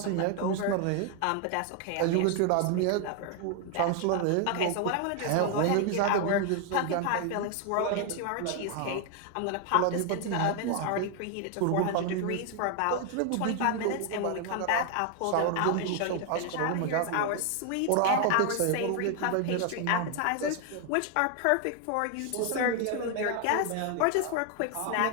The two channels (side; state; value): both; different; correlation 0.00